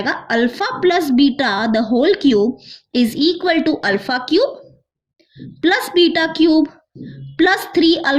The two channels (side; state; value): both; identical; correlation 1.00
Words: alpha plus beta the whole cube is equal to alpha cube plus beta cube plus 3